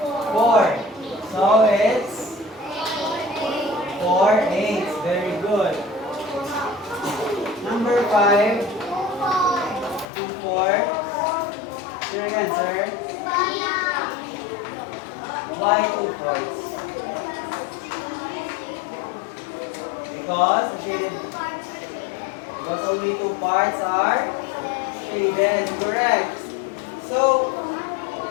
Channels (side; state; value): right; drops out; at 10.1 s